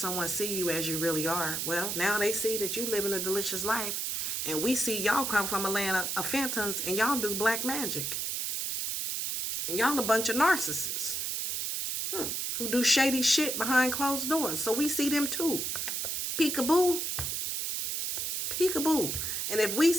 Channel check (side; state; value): right; noise; hiss, 1 dB below the sound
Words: see you as you really are. Well, now they see that you living a delicious life. And we see y'all come from a land of phantoms and y'all do black magic. And y'all a bunch of narcissists. Who do shady shit behind closed doors. So we see them too. Peekaboo. Peekaboo. And if we